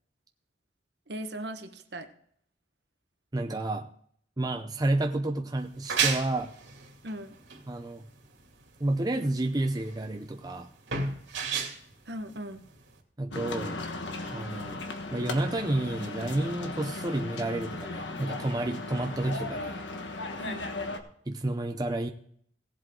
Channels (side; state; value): both; normal; correlation 0.67